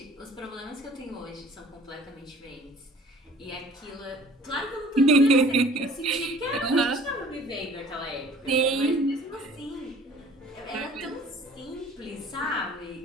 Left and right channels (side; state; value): both; normal; correlation 0.50